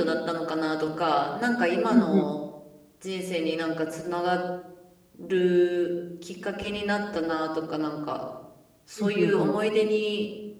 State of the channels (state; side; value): identical; both; correlation 1.00